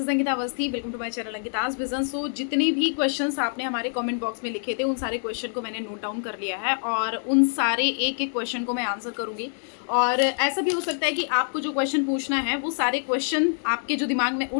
Ankita Awasthi. Welcome to my channel Ankita's vision. So जितने भी क्वेश्चंस आपने हमारे कमेंट बॉक्स में लिखे थे उन सारे क्वेश्चन को मैंने नोट डाउन कर लिया है और उन सारे एक एक क्वेश्चन को मैं आंसर करूंगी। और ऐसा भी हो सकता है कि आपको जो क्वेश्चन पूछना है वो सारे क्वेश्चन आपके जो दिमाग में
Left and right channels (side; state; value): right; silent; 61 dB below the other